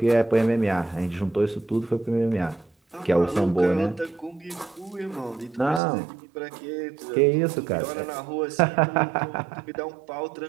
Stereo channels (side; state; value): left; drops out; at 5.8 s